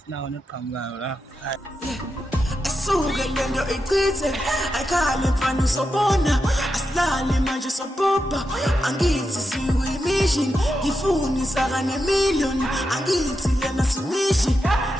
neqhamukayo la. Asuke lento ichithe ayikhale mfana usobona asilale manje sobhobha angithi sikuyimission ngifuni saka ne-million angithi lena simission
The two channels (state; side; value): normal; both; correlation 0.87